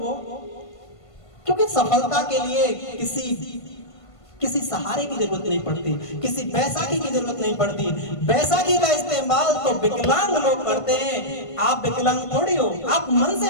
क्योंकि सफलता के लिए किसी सहारे की जरूरत नहीं पड़ती, किसी बैसाखी की जरूरत नहीं पड़ती। बैसाखी का इस्तेमाल तो विकलांग लोग करते हैं, आप विकलांग थोड़ी हो, आप मन से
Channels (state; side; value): late; right; 1.5 ms